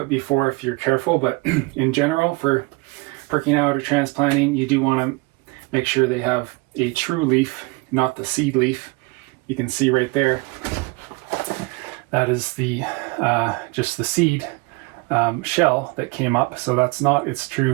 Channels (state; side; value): quieter; left; 26.3 dB